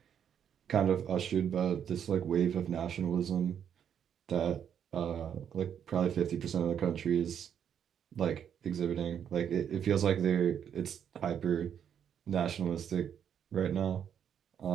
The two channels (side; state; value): left; quieter; 8.6 dB